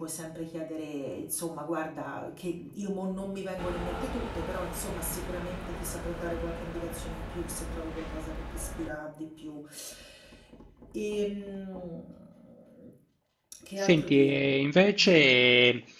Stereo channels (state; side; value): identical; both; correlation 1.00